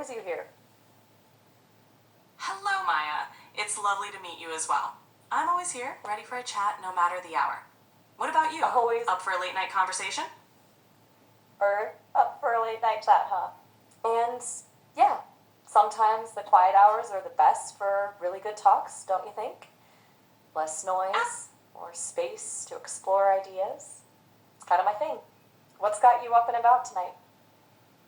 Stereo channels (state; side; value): identical; both; correlation 1.00